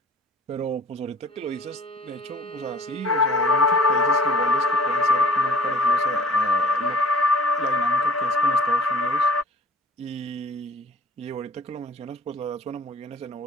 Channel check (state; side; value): normal; both; correlation 0.48